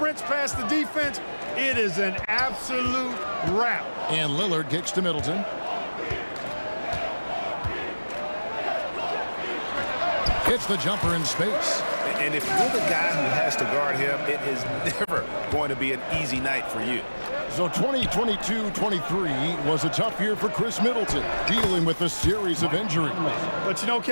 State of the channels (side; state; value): both; inverted; correlation -1.00